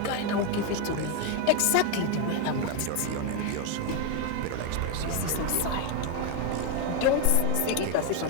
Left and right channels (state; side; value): different; both; correlation 0.01